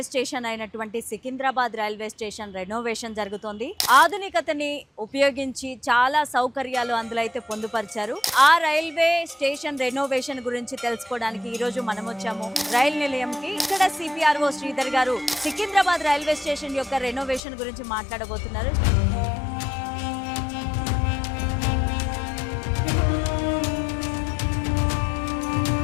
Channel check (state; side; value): drops out; right; at 17.4 s